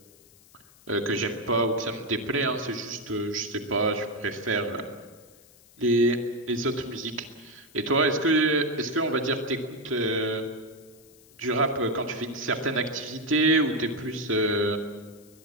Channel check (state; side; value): noise; left; hiss, 26 dB below the sound